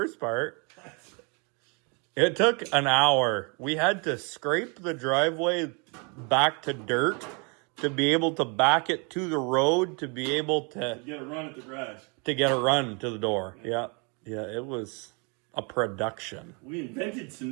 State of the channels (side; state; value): left; quieter; 33.5 dB